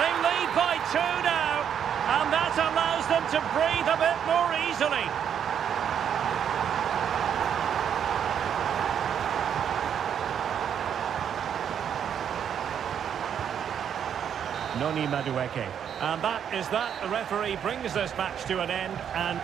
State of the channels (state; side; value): quieter; left; 8.5 dB